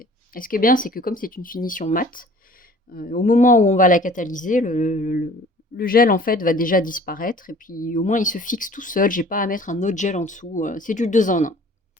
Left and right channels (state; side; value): normal; both; correlation 0.50